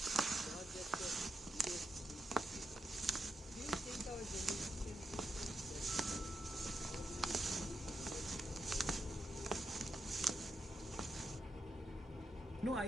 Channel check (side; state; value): both; normal; correlation 0.85